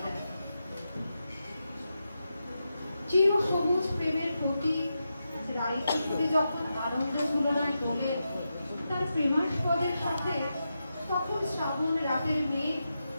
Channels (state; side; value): inverted; both; correlation -0.88